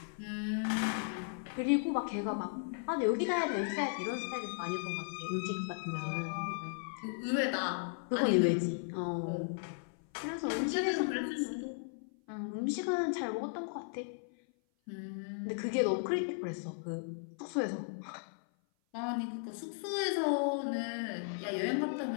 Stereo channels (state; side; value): silent; right; 54 dB below the other